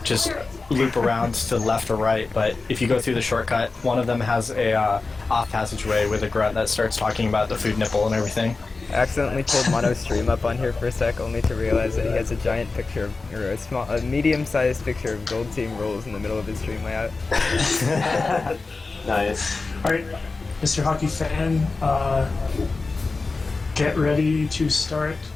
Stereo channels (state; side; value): quieter; right; 3.9 dB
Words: just loop around to the left or right. But if you go through the shortcut, one of them has a off passageway with a grunt that starts talking about the food nipple and everything. I accidentally pulled Mono's stream up on here for a sec, only to realize that he has a giant picture of, or a medium-sized picture of Gold Team rules in the middle of his stream layout. Nice. Alright, Mr. Hockey Fan, get ready to start